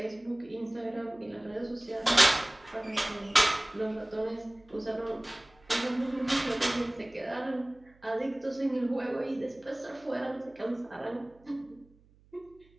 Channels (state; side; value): noise; right; hum, 29 dB below the sound